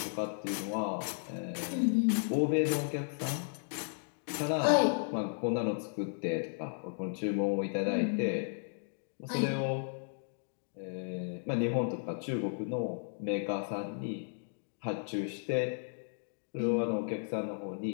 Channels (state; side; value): silent; right; digital silence